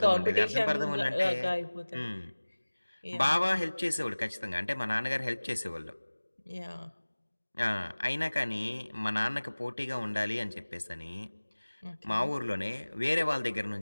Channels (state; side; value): inverted; both; correlation -1.00